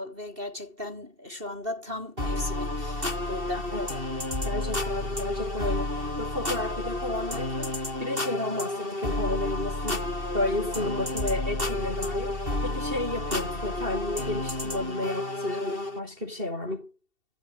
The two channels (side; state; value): left; late; 2.7 ms